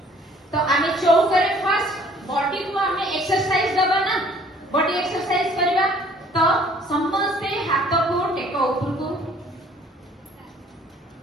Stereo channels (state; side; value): normal; both; correlation 0.56